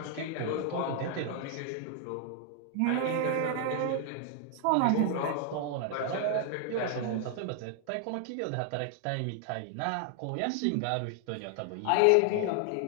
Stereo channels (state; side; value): different; both; correlation 0.00